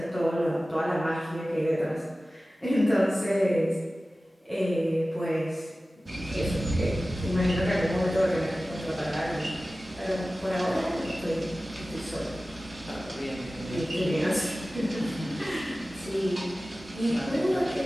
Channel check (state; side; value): normal; both; correlation 0.96